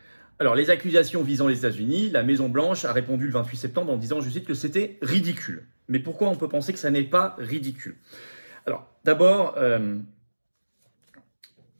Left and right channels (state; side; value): inverted; both; correlation -1.00